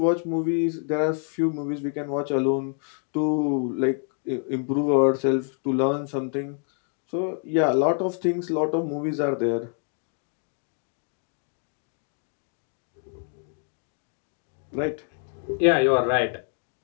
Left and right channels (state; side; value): silent; right; 55 dB below the other